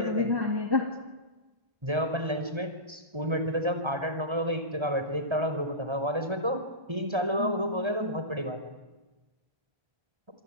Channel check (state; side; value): late; left; 1.3 ms